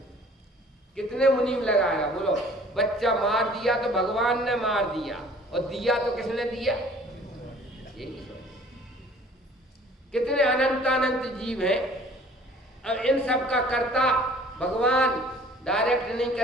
कितने मुनीम लगाएगा बोलो। बच्चा मार दिया तो भगवान ने मार दिया, और दिया तो किसने दिया? यही सोच। कितने अनंत जीव हैं, अब इन सब का कर्ता भगवान डायरेक्ट नहीं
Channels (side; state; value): both; normal; correlation 0.51